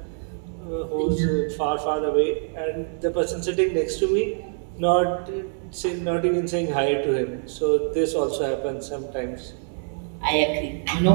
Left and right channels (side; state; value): left; silent; 62 dB below the other